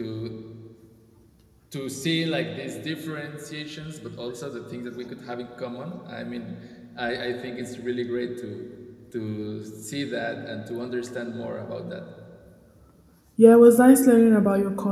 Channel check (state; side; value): identical; both; correlation 1.00